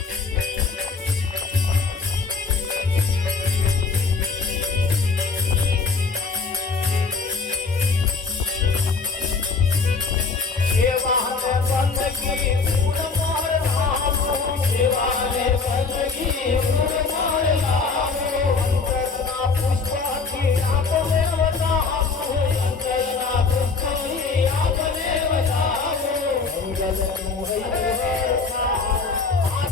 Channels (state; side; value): quieter; right; 4.5 dB